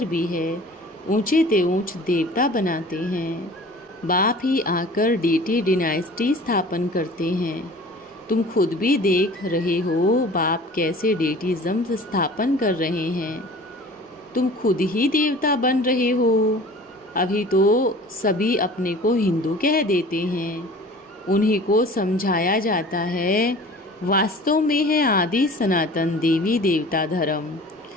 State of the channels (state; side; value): normal; both; correlation 0.44